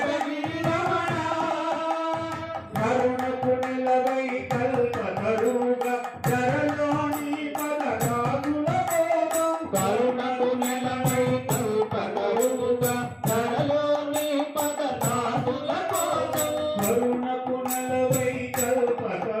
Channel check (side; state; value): both; identical; correlation 1.00